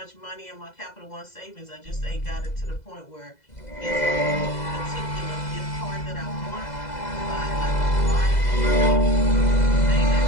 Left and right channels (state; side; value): late; right; 2.0 ms